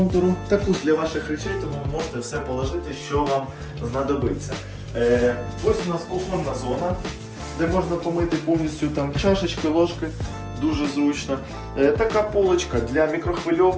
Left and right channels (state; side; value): identical; both; correlation 1.00